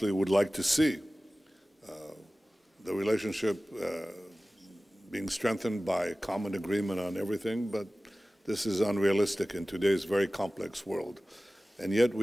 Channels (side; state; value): both; normal; correlation 0.97